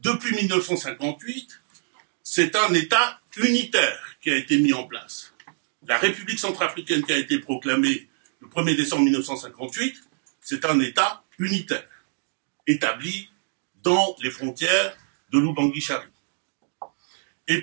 depuis 1958, c'est un État unitaire qui a été mis en place. La République centrafricaine qui a été proclamée le 1er décembre 1958, c'est un État unitaire, établi dans les frontières de l'Oubangui-Chari. Et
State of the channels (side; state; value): left; silent; digital silence